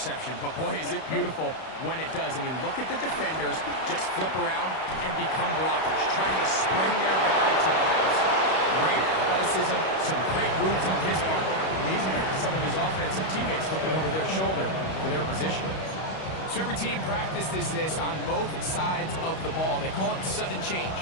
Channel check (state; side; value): late; right; 31 ms